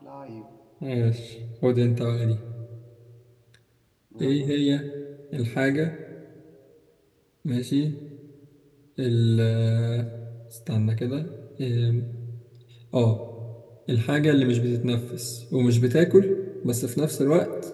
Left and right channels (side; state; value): both; identical; correlation 1.00